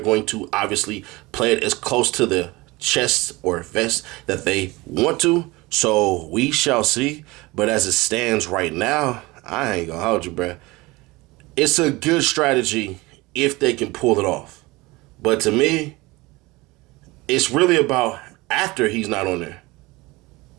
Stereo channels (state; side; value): quieter; left; 22.0 dB